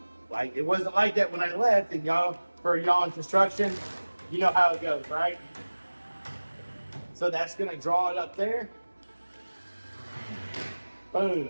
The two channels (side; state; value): both; inverted; correlation -1.00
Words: Like, it wasn't like that when I left. And for y'all in construction, you know how it goes, right? So that's gonna draw it up there. Boom,